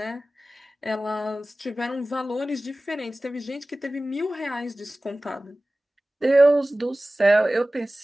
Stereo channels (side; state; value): both; normal; correlation 0.97